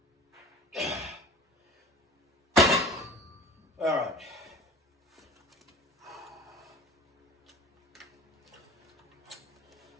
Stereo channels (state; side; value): normal; both; correlation 0.42